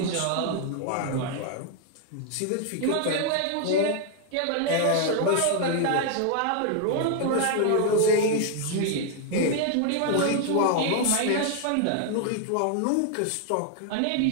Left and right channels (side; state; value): both; different; correlation 0.00